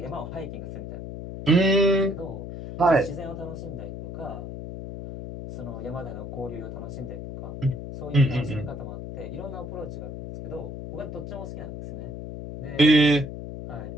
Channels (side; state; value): left; noise; hum, 8 dB below the sound